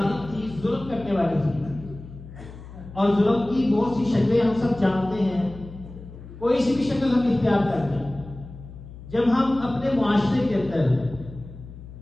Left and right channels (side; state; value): left; noise; hum, 15 dB below the sound